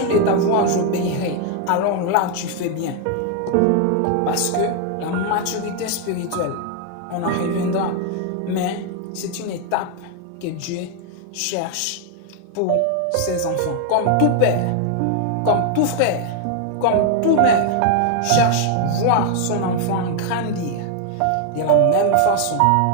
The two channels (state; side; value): different; both; correlation 0.00